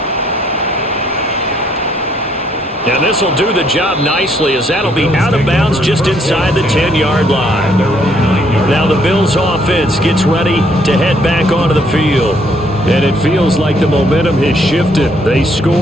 And this will do the job nicely as that'll be out of bounds just inside the 10-yard line. Now the Bills offense gets ready to head back onto the field. And it feels like the momentum has shifted. They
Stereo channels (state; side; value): normal; both; correlation 0.68